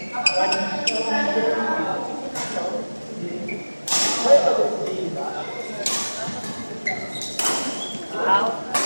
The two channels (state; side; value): inverted; both; correlation -1.00